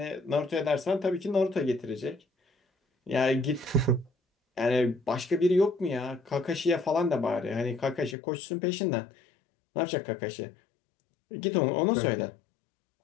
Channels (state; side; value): drops out; right; at 8.2 s